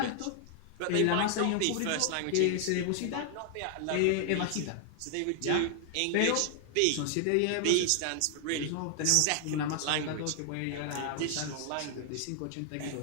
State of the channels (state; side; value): different; both; correlation 0.00